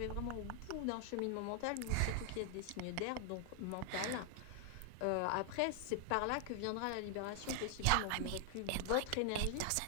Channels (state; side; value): different; both; correlation 0.00